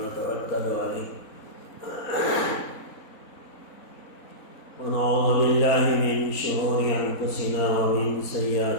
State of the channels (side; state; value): right; late; 4.2 ms